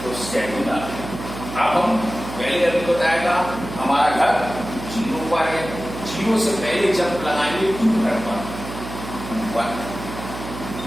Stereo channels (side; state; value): right; noise; hum, 10 dB below the sound